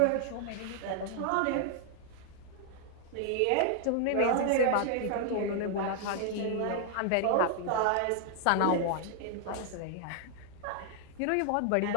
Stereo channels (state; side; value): different; both; correlation 0.00